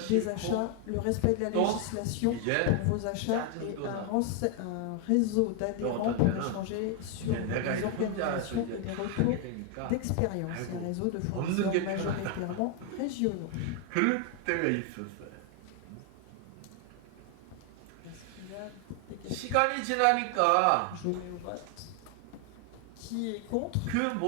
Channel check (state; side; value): different; both; correlation 0.00